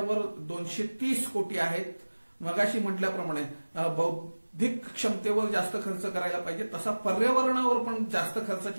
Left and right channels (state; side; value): inverted; both; correlation -1.00